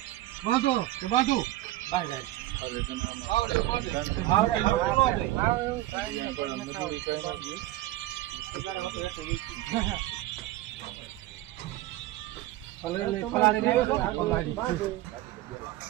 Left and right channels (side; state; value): left; quieter; 15.9 dB